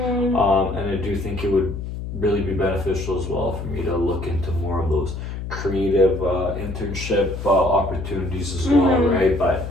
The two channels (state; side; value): noise; left; hum, 7 dB below the sound